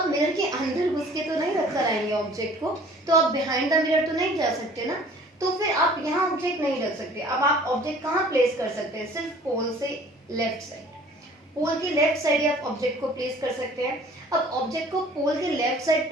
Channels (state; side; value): normal; both; correlation 0.51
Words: मिरर के अंदर घुस के तो नहीं रख कर आएंगे ऑब्जेक्ट को, तो आप बिहाइंड द मिरर तो नहीं जा सकते ना, तो फिर आप यहाँ ऑब्जेक्ट नहीं रख सकते। अब आप ऑब्जेक्ट कहाँ प्लेस कर सकते हैं? सिर्फ पोल से लेफ्ट साइड, पोल के लेफ्ट साइड आप ऑब्जेक्ट को प्लेस कर सकते हैं। अब ऑब्जेक्ट को पोल के लेफ्ट साइड